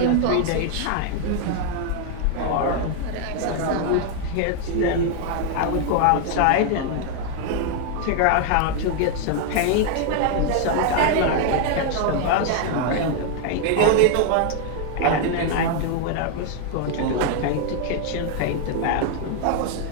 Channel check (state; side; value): different; both; correlation 0.00